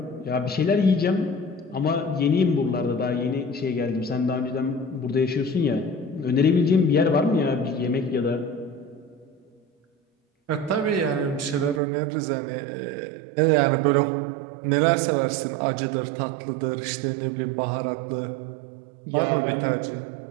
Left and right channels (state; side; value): drops out; left; at 11.8 s